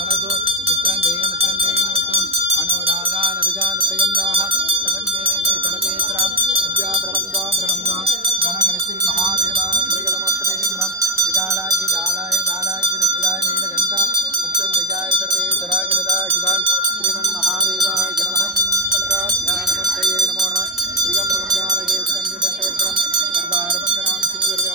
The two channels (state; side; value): normal; both; correlation 0.09